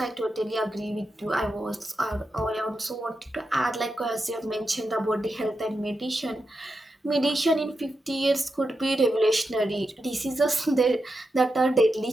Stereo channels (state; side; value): normal; both; correlation 0.88